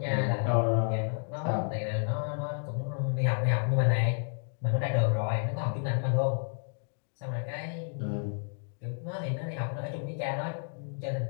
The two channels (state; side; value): silent; right; 55 dB below the other